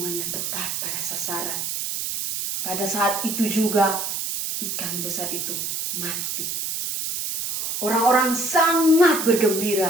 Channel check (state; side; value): noise; right; hiss, 3 dB below the sound